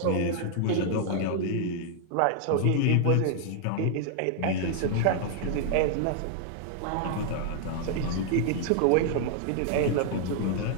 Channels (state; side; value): different; both; correlation -0.01